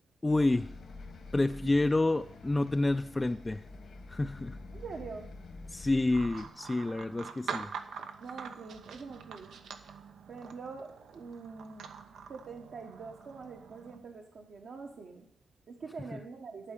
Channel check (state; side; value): normal; both; correlation 0.97